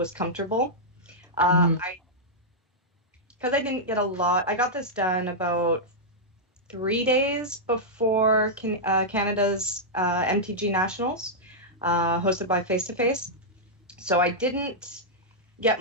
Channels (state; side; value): normal; both; correlation -0.07